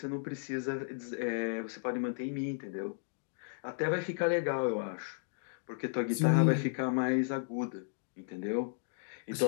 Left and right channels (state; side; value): silent; right; digital silence